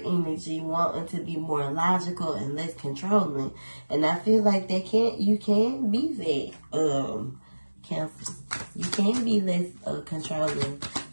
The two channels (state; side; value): inverted; both; correlation -1.00